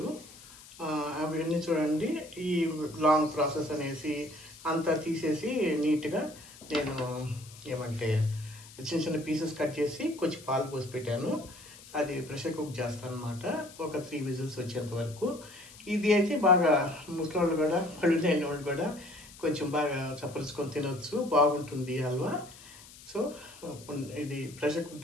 అవన్నీ చూడండి. ఈ లాంగ్ ప్రాసెస్ అనేసి అంతా తీసేసి నీట్గా నేను ఏమంటే చిన్న చిన్న పీసెస్ కట్ చేసి కొంచెం పాలు పోసి పెట్టాను. అది ప్రెషర్ కుక్ చేస్తాను అనమాట, ఒక 3 విజిల్స్ వచ్చేంత వరకు. ఇది అయితే బాగా ముసలోళ్ళు కూడా, పళ్ళు లేని వాళ్ళు కూడా కొంచెం బాగా చప్పరించుకొని తినవచ్చు, బాగుంటుంది హల్వా. సో ఇది ప్రెషర్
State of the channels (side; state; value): left; noise; hiss, 19 dB below the sound